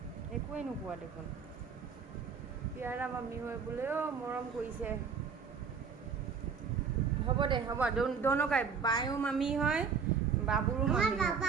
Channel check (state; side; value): quieter; left; 6.0 dB